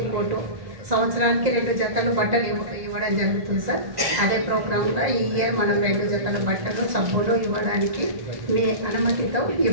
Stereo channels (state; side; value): late; left; 1.9 ms